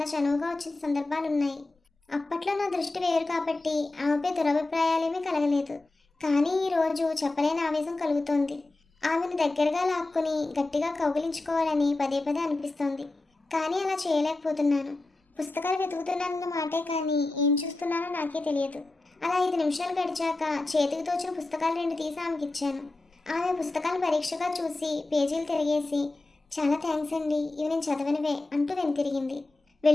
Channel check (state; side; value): quieter; right; 3.0 dB